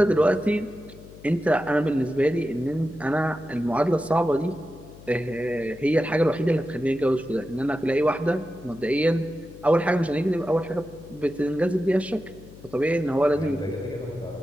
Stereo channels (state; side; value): noise; left; hum, 19 dB below the sound